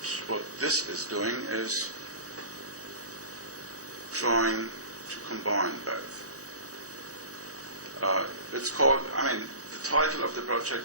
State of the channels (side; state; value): left; late; 0.66 ms